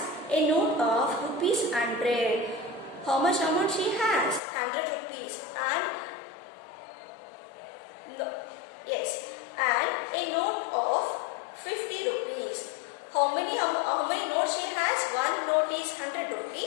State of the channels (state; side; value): drops out; right; at 4.4 s